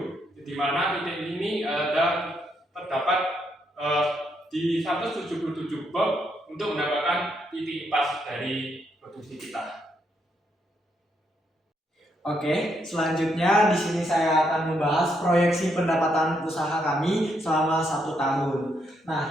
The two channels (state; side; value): normal; both; correlation 0.76